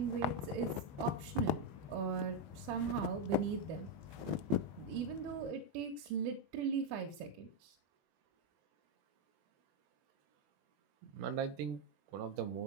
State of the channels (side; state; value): left; late; 21 ms